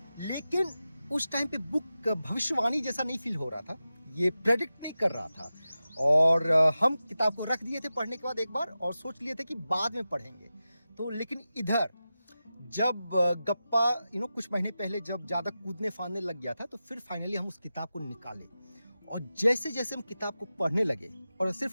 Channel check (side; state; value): both; inverted; correlation -0.93